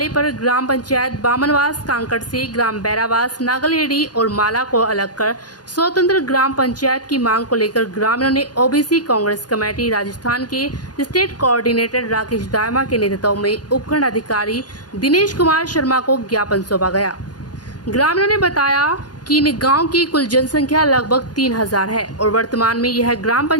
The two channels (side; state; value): right; late; 0.69 ms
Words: पर ग्राम पंचायत बामनवास कांकड़ से ग्राम बैरावास नागलहेड़ी और माला को अलग कर स्वतंत्र ग्राम पंचायत की मांग को लेकर ग्रामीणों ने ओबीसी कांग्रेस कमेटी राजस्थान के स्टेट कोऑर्डिनेटर राकेश दायमा के नेतृत्व में उपखंड अधिकारी दिनेश कुमार शर्मा को ज्ञापन सौंपा गया। ग्रामीणों ने बताया कि इन गांव की कुल जनसंख्या लगभग 3000 है और वर्तमान में यह ग्राम